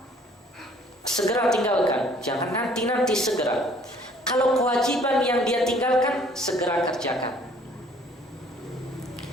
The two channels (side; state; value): both; normal; correlation 0.57